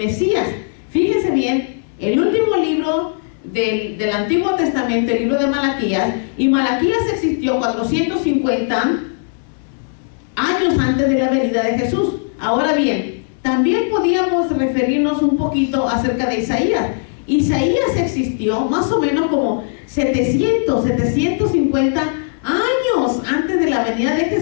Fíjense bien, el último libro del Antiguo Testamento, el libro de Malaquías, y Malaquías existió 450 años antes de la venida de Jesús. Ahora bien, también podíamos referirnos un poquito acerca de Isaías. Isaías existió más o menos como 750 años antes de la venida de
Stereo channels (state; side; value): silent; right; 66 dB below the other